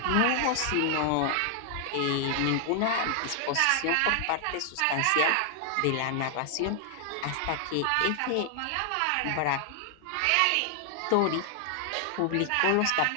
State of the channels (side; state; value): both; different; correlation 0.00